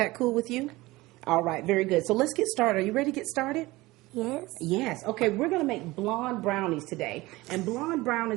cool with you? All right, very good. So let's get started. Are you ready to get started? Yes. Yes. Okay, we're going to make blonde brownies today. And blonde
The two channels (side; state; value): left; quieter; 20.0 dB